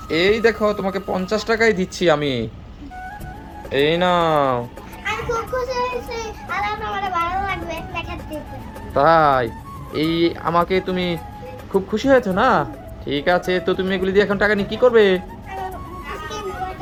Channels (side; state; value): both; identical; correlation 1.00